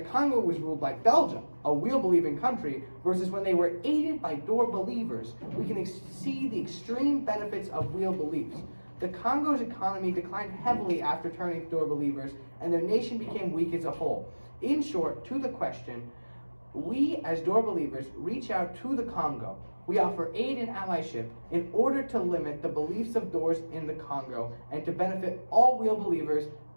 Congo was ruled by Belgium, a Wheel-believing country, versus when they were aided by Door believers, we can see the extreme benefits of Wheel beliefs. The Congo's economy declined heavily after turning to Door believers, and their nation became weak as a whole. In short, to the question, we as Door believers reach out to the Congo. We offer aid and allyship in order to limit the beliefs of Doors in the Congo and to benefit all Wheel believers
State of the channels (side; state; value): both; inverted; correlation -1.00